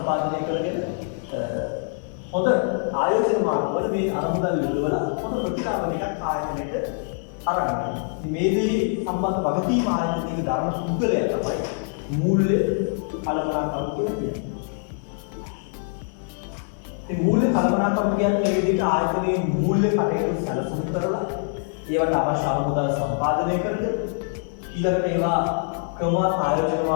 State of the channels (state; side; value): silent; right; 62 dB below the other